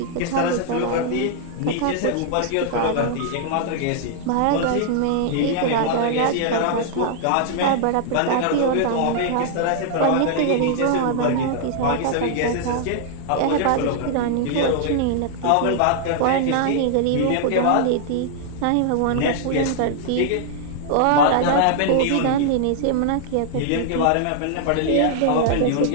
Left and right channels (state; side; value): different; both; correlation -0.01